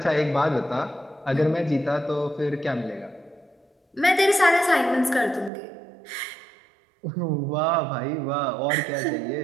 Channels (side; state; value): left; drops out; at 5.5 s